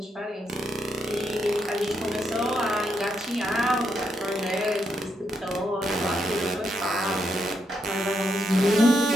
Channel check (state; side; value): normal; both; correlation 0.79